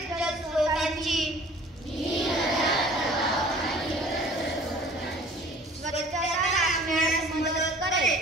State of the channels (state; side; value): normal; both; correlation 0.49